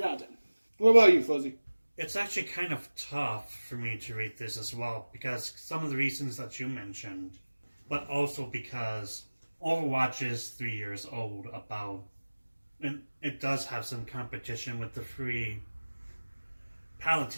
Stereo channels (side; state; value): both; inverted; correlation -1.00